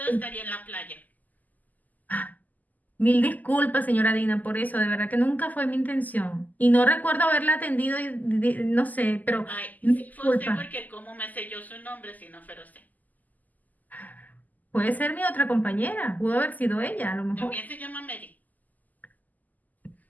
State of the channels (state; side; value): late; right; 0.081 ms